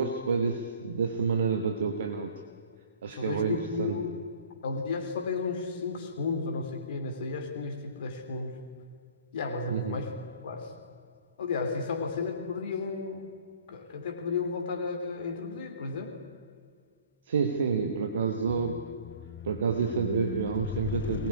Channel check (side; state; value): both; inverted; correlation -0.50